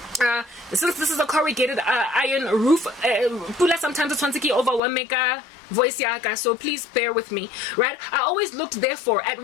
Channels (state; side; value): drops out; right; at 4.8 s